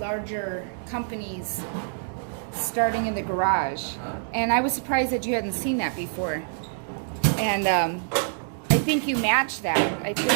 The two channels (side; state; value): left; silent; digital silence